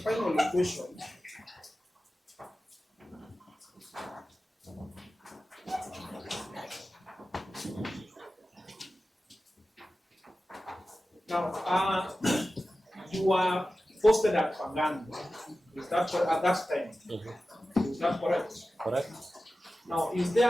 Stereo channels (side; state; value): both; normal; correlation 0.94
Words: question. Now, you were posted at Pangani. Is that at that time? Is that correct? Correct. Now, was